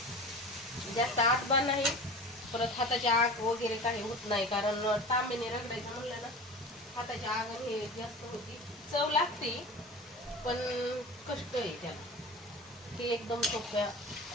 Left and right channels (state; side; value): normal; both; correlation 0.34